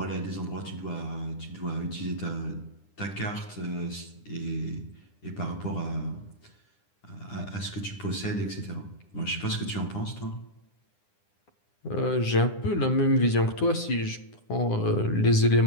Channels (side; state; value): right; late; 9.9 ms